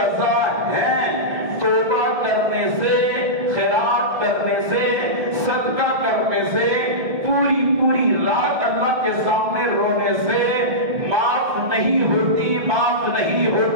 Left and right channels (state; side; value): late; left; 1.7 ms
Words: ہیں، توبہ کرنے سے، خیرات کرنے سے، صدقہ کرنے سے، پوری رات اللہ کے سامنے رونے سے معاف نہیں ہوتی، معاف نہیں